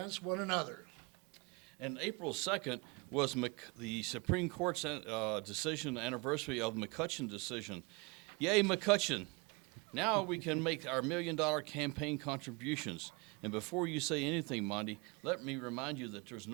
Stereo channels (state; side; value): quieter; left; 28.4 dB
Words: one another. And April 2nd was the Supreme Court's decision anniversary of the McCutcheon decision. Yay, McCutcheon. Now we can make our $1 million campaign contributions. And before you say anything, Monty, let me remind you that there's